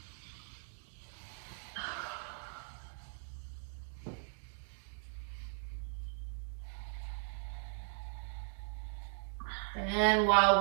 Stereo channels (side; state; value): left; silent; digital silence